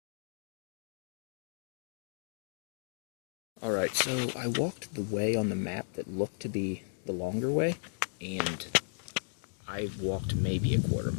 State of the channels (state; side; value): silent; right; digital silence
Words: Alright, so I walked the way on the map that looked to be the longer way, and I walked maybe a quarter